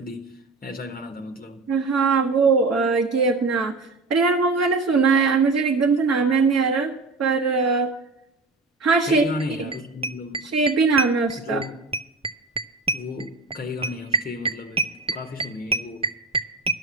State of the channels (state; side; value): quieter; left; 3.7 dB